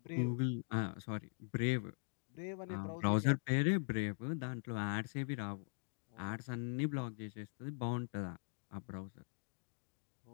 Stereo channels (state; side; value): silent; right; digital silence